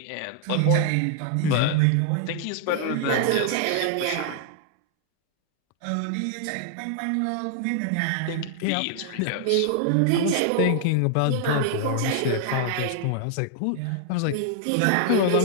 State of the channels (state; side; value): different; both; correlation 0.00